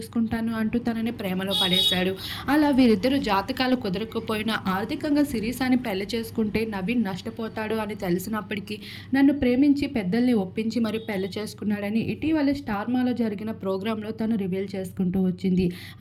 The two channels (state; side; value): identical; both; correlation 1.00